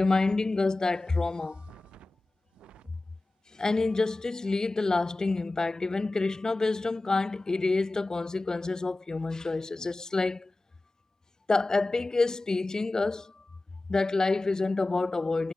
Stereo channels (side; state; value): right; quieter; 3.0 dB